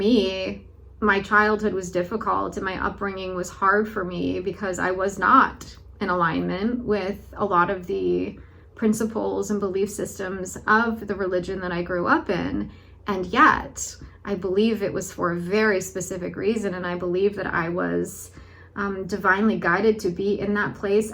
my childhood was difficult and my upbringing was hard for me because I was not in alignment with a lot of the principles and belief systems of the religion that I grew up in. And yet, I believe it was for a very specific reason. And I believe that I was divinely guided to be in that place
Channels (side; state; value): both; identical; correlation 1.00